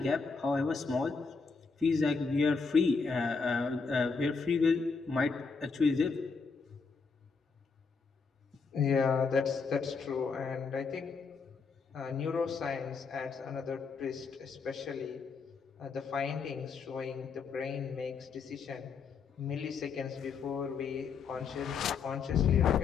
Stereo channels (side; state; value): right; quieter; 5.0 dB